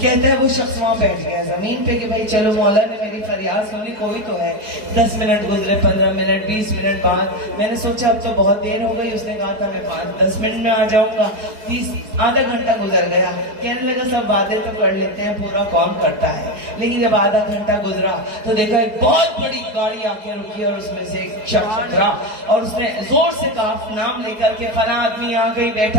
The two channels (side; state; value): left; late; 4.7 ms